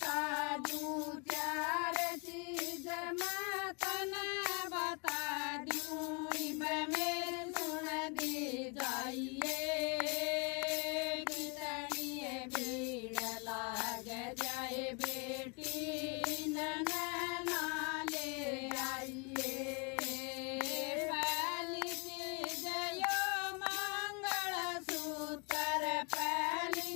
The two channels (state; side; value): quieter; right; 33.1 dB